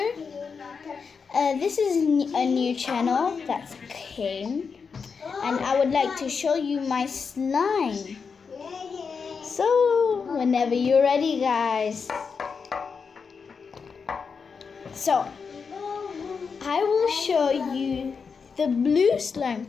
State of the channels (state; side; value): quieter; right; 5.6 dB